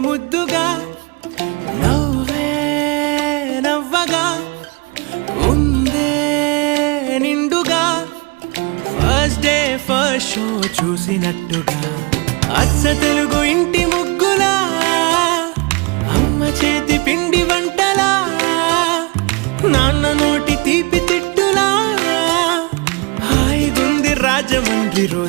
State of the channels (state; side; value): quieter; left; 28.8 dB